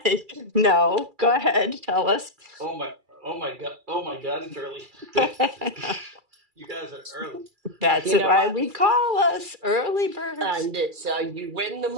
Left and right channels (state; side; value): late; left; 2.3 ms